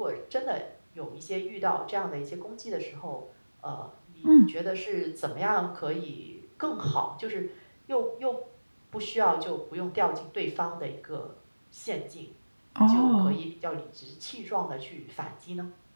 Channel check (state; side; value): inverted; both; correlation -1.00